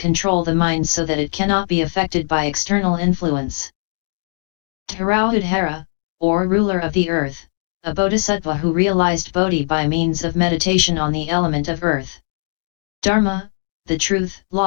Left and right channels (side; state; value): right; silent; digital silence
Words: the mind so that it cannot be affected by external influence. Tarauhudhara, or ruler of the earth, a bodhisattva who realized Bodhi by means of meditation on the element of earth. Dharma, the truth,